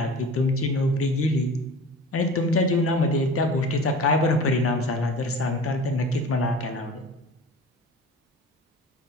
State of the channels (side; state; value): both; normal; correlation 0.38